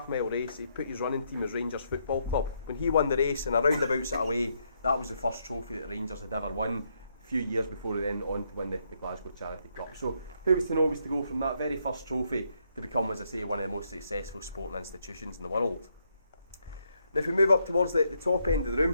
race, he put his running team as Rangers Football Club. When he won the race in a roundabout sort of way, that was the first trophy that Rangers had ever won, a few years before he then on to win the Glasgow Charity Cup. So who was to know was to go from that very first trophy to become, as I say, one of the most successful sporting institutions in the world. Now if we move up towards the top end of the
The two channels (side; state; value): both; inverted; correlation -0.75